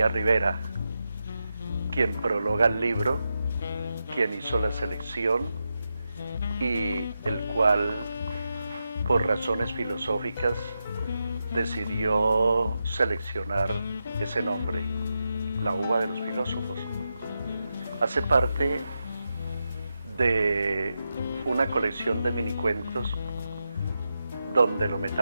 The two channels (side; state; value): both; inverted; correlation -0.88